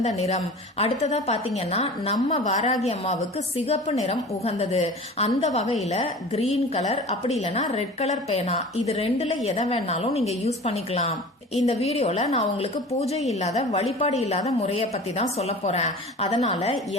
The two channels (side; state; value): both; normal; correlation 0.38